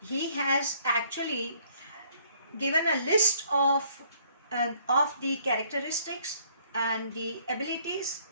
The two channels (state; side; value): inverted; both; correlation -0.63